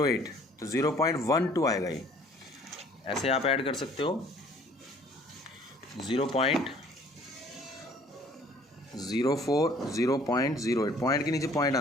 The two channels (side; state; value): both; normal; correlation 0.56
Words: तो 0.12 आएगा। ये ऐसे आप ऐड कर सकते हो, 0.04, 0.08, पॉइंट के नीचे पॉइंट